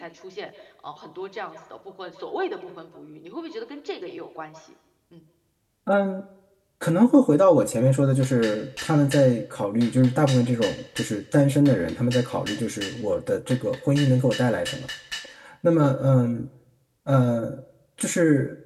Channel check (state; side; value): identical; both; correlation 1.00